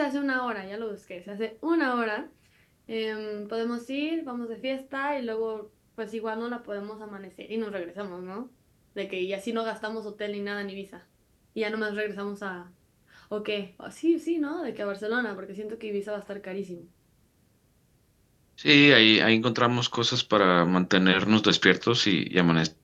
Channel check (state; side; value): identical; both; correlation 1.00